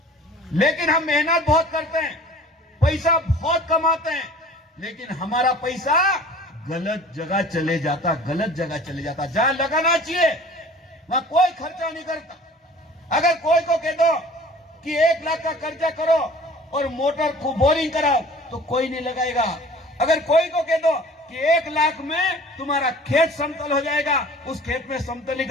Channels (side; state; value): both; normal; correlation 0.46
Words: लेकिन हम मेहनत बहुत करते हैं, पैसा बहुत कमाते हैं, लेकिन हमारा पैसा गलत जगह चले जाता, गलत जगह चले जाता। जहां लगाना चाहिए वहां कोई खर्चा नहीं करता। अगर कोई को कह दो कि 1 लाख का कर्जा करो और मोटर को बोरिंग कराओ तो कोई नहीं लगाएगा। अगर कोई को कह दो कि 1 लाख में तुम्हारा खेत समतल हो जाएगा, उस खेत में